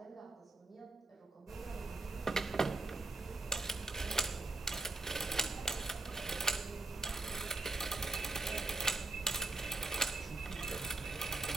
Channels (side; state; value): left; quieter; 3.1 dB